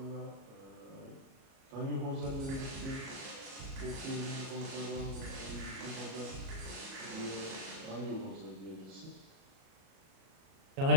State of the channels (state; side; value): late; left; 37 ms